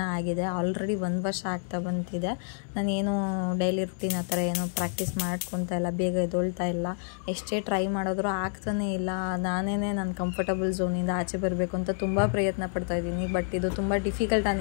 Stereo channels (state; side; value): silent; right; 59 dB below the other